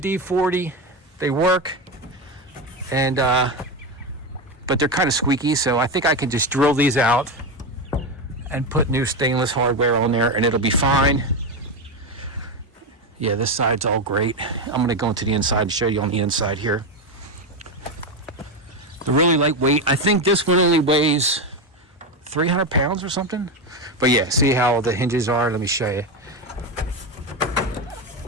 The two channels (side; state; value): both; normal; correlation 0.13